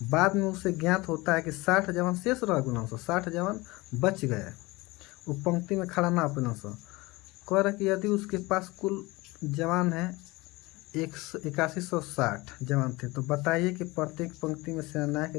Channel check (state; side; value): quieter; right; 22.4 dB